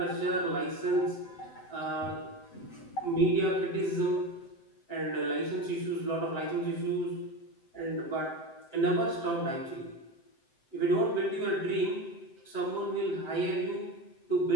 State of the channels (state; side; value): late; right; 7.8 ms